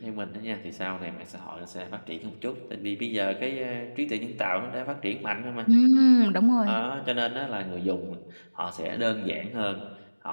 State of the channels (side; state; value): both; inverted; correlation -1.00